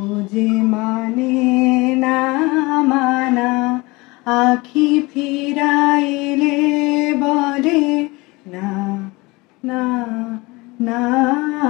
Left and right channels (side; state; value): right; quieter; 23.6 dB